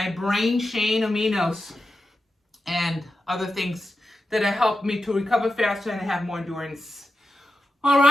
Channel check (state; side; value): normal; both; correlation 0.91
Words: brain chain aminos, and other things that have helped me to recover faster and have more endurance. All